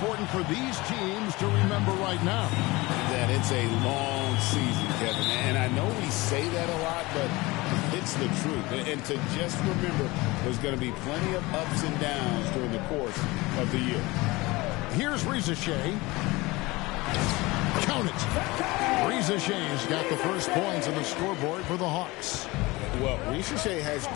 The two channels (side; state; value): right; quieter; 22.1 dB